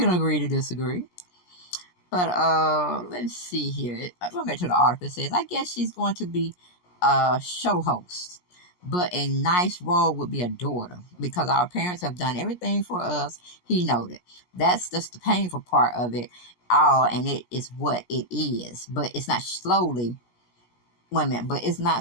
agree to disagree. But let's see here. Going back to the article, it says, I guess she's going to be a show host, but a nice role would be a daughter because our parents have done everything for us. He noted. That's just the painful part of it all, and it is what it is. But it's not slowly. Wait a minute. But it's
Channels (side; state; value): right; late; 17 ms